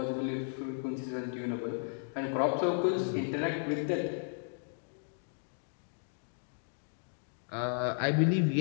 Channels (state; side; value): silent; right; digital silence